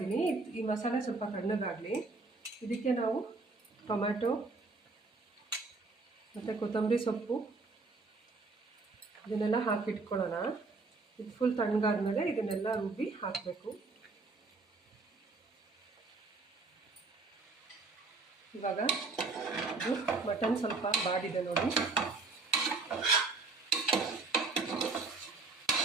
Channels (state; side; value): quieter; left; 3.8 dB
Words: ಈ ಮಸಾಲೆ ಸ್ವಲ್ಪ ತಣ್ಣಗಾಗಲಿ. ಇದಕ್ಕೆ ನಾವು ಟೊಮ್ಯಾಟೊ ಮತ್ತು ಕೊತ್ತಂಬರಿ ಸೊಪ್ಪು ಇದನ್ನೆಲ್ಲ ಹಾಕಿಟ್ಕೊಳ್ಳೋಣ. ಇದು ಫುಲ್ ತಣ್ಣಗಾದ್ಮೇಲೆ ಇದನ್ನೆಲ್ಲ ರುಬ್ಬಿ ಹಾಕಬೇಕು. ಇವಾಗ ಇದು ಮಟನ್ ಸ್ವಲ್ಪ ಬಾಡಿದೆ ನೋಡಿ,